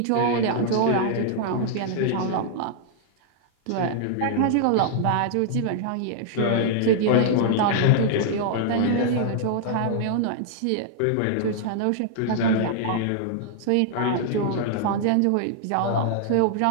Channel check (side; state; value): both; different; correlation -0.01